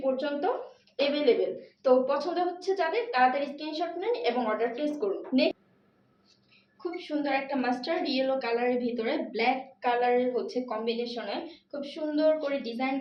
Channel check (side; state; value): both; identical; correlation 1.00